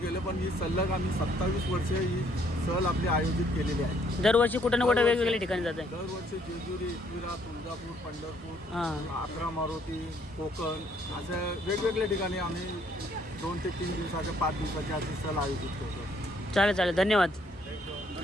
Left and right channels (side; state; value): both; normal; correlation 0.66